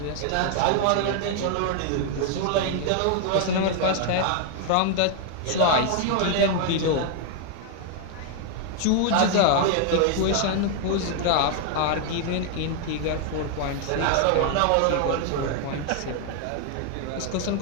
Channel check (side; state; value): both; different; correlation 0.00